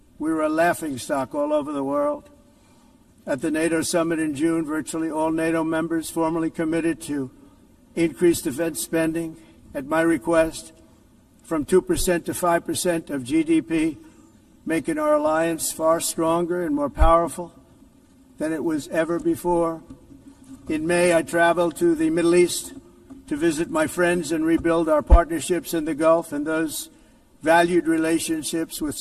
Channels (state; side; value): identical; both; correlation 1.00